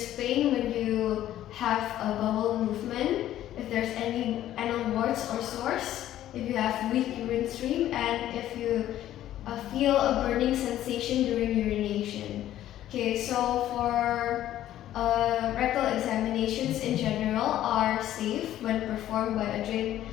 pain when you have a bowel movement, if there's any anal warts or sores, if you have weak urine stream, and if you feel a burning sensation during urination. Okay, so for rectal examinations in general are safe when performed by a trained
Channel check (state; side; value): quieter; right; 12.7 dB